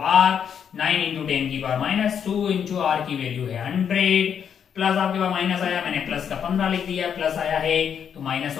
9 × 10⁻² into R की वैल्यू है 100, प्लस आपके पास माइनस आया, मैंने प्लस का 15 लिख दिया, प्लस आया है तो माइनस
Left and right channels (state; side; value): quieter; right; 7.9 dB